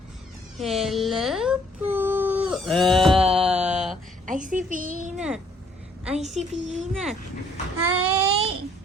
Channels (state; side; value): normal; both; correlation 0.64